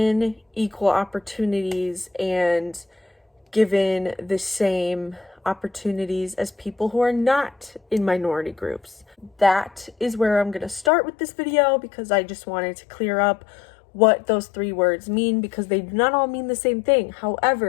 equal opportunities and given the same opportunities as people who are not in minority groups. That is where I'm going to start with this video because I just wanted to clear up what those three words mean because they do not all mean the same thing.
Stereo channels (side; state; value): right; drops out; at 10.9 s